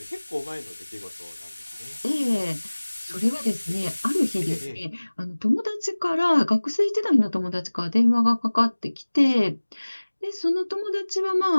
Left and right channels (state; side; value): inverted; both; correlation -1.00